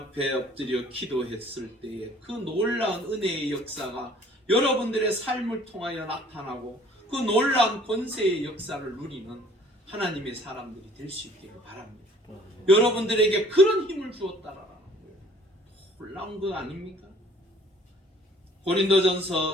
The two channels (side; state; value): both; normal; correlation 0.55